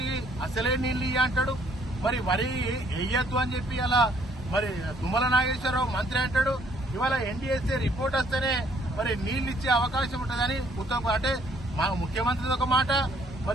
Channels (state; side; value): normal; both; correlation 0.64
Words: అసలే నీళ్లు ఇయ్య అంటాడు, మరి వరి వేయద్దు అని చెప్పి అలా మరి తుమ్మల నాగేశ్వరరావు మంత్రి అంటాడు. ఇవాళ ఎన్డీఎస్ఏ రిపోర్ట్ వస్తేనే మరి నీళ్లు ఇచ్చే అవకాశం ఉంటుందని ఉత్తమ్, అంటే మా ముఖ్యమంత్రిది ఒక మాట,